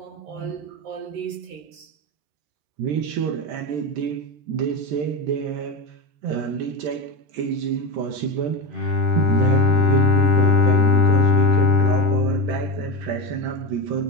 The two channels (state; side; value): late; left; 13 ms